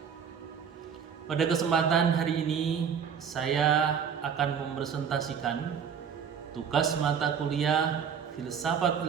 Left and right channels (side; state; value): left; quieter; 7.2 dB